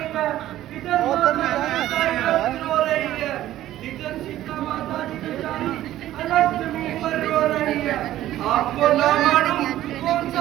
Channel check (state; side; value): quieter; left; 13.7 dB